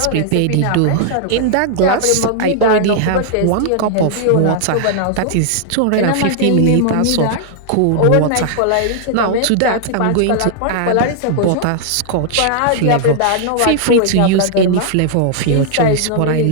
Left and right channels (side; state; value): both; different; correlation -0.01